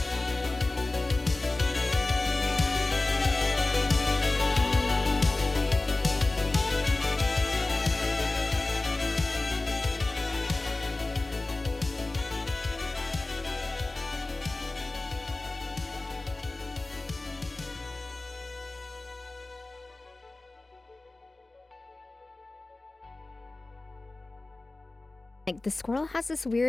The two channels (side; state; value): right; quieter; 3.0 dB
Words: Like the squirrel has this